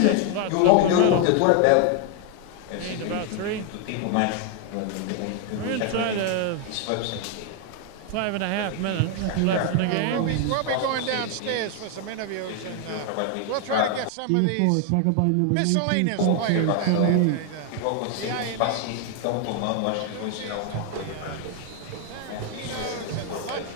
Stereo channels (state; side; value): different; both; correlation 0.00